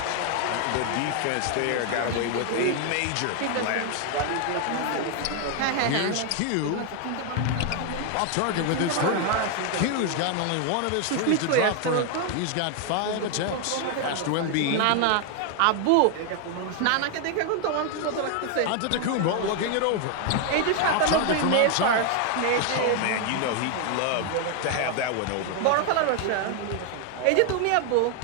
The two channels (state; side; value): different; both; correlation 0.00